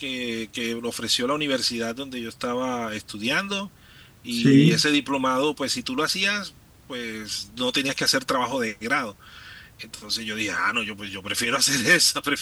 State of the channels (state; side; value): identical; both; correlation 1.00